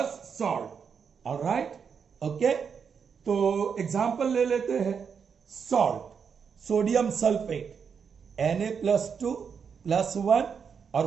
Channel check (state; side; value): quieter; left; 6.5 dB